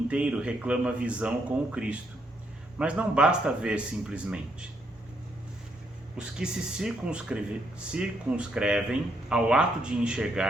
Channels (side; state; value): both; normal; correlation 0.75